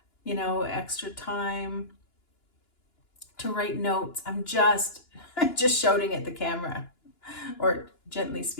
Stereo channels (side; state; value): right; late; 2.9 ms